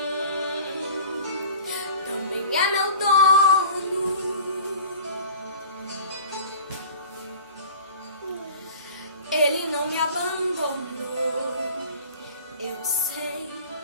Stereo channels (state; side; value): inverted; both; correlation -0.43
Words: também é meu dono. Ele não me abandonou, eu sei,